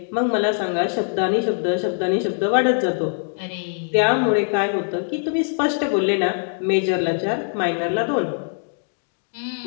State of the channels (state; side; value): silent; right; 64 dB below the other